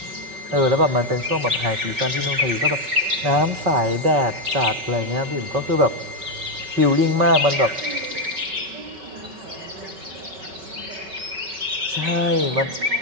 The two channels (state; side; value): late; left; 5.2 ms